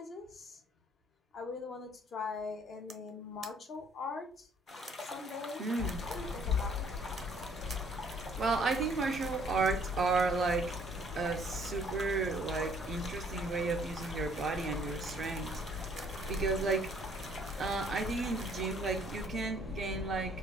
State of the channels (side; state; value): both; normal; correlation 0.62